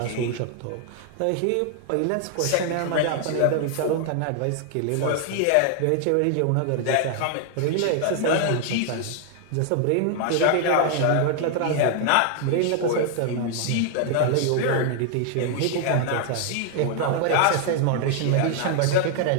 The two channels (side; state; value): both; different; correlation 0.00